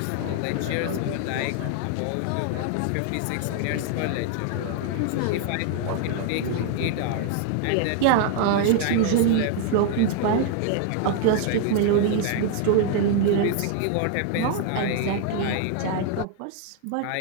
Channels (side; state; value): both; different; correlation 0.00